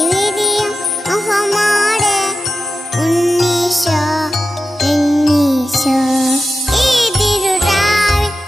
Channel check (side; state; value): both; normal; correlation 0.91